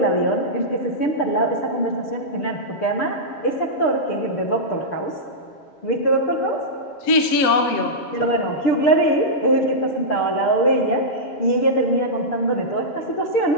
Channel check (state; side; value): late; right; 7.6 ms